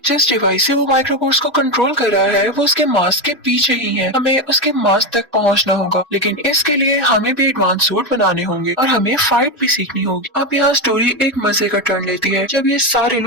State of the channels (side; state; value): both; normal; correlation 0.11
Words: जिस डिवाइस से वो माइक्रोबोट्स को कंट्रोल कर रहा है वो उसके मास्क के पीछे ही है, हमें उसके मास्क तक पहुंचना होगा, लेकिन इसके लिए हमें भी एडवांस सूट बनाने होंगे और हमें फाइट भी सीखनी होगी। अब यहाँ स्टोरी एक मजे का टर्न लेती है जब ये सारे